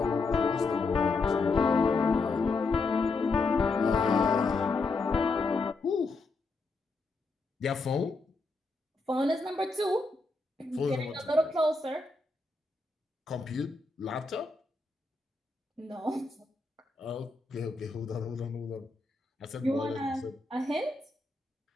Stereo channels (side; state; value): right; quieter; 3.7 dB